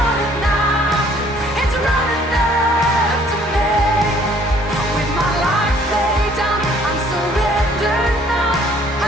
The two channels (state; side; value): normal; both; correlation 0.59